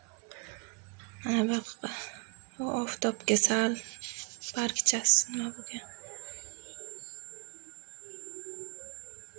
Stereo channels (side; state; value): left; quieter; 33.6 dB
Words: Mana bu oftobga sal bargchasi nima bo'lgan.